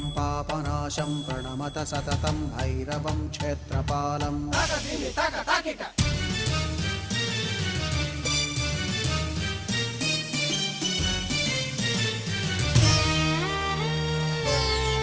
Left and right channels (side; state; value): both; identical; correlation 1.00